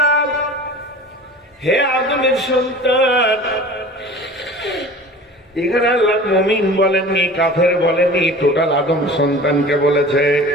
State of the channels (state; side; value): normal; both; correlation 0.40